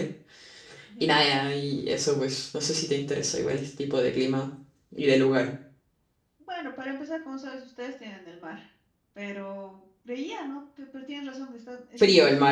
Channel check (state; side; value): identical; both; correlation 1.00